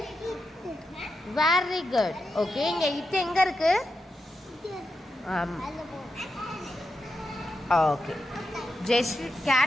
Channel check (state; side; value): normal; both; correlation 0.87